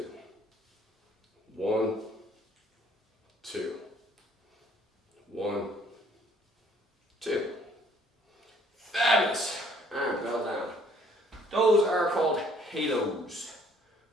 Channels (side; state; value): both; normal; correlation 0.61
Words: 1, 2, 1, 2. Fabulous. Those are called halos.